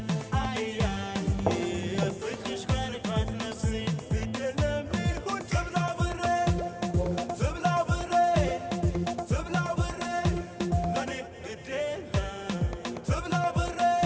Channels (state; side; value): identical; both; correlation 1.00